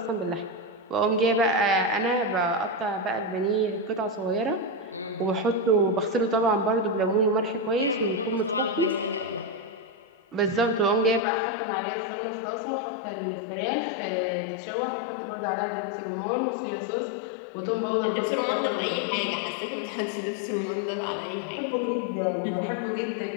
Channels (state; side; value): drops out; right; at 11.2 s